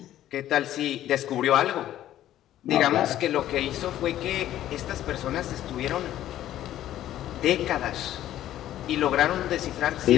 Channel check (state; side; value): quieter; right; 12.7 dB